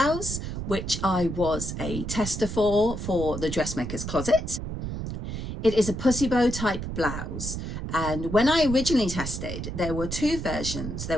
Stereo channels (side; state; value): right; noise; rumble, 6 dB below the sound